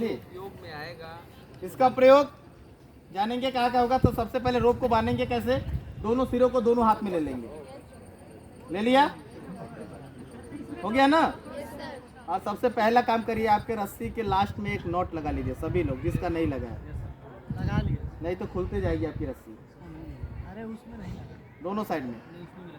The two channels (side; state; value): both; identical; correlation 1.00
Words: योग में आएगा, इसका प्रयोग जानेंगे कहाँ का होगा। तो सबसे पहले रोप को बांधेंगे कैसे, दोनों सिरों को दोनों हाथ में ले लेंगे, ले लिया, हो गया ना। और सबसे पहला काम करिए, आपके रस्सी के लास्ट में एक नॉट लगा लीजिए सभी लोग, जिसका नहीं लगा है लगा लिए, नहीं तो खुलते जाएगी आपकी रस्सी अरे उसमें नहीं लगा, दोनों साइड में।